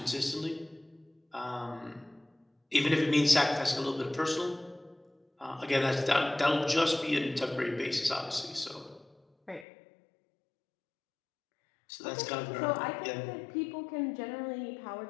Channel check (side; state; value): right; drops out; at 9.7 s